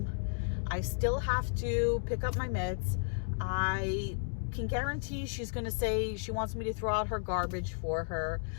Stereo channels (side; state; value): right; silent; digital silence